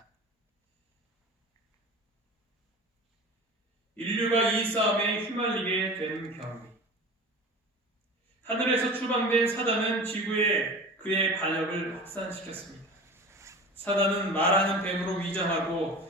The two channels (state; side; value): normal; both; correlation 0.35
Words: 인류가 이 싸움에 휘말리게 된 경위. 하늘에서 추방된 사단은 지구에 그의 반역을 확산시켰습니다. 사단은 말하는 뱀으로